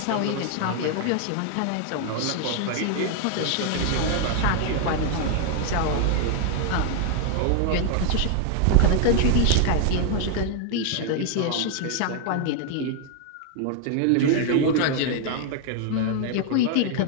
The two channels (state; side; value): different; both; correlation 0.00